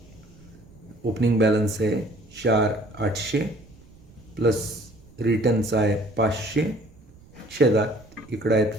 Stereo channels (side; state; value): right; noise; rumble, 24 dB below the sound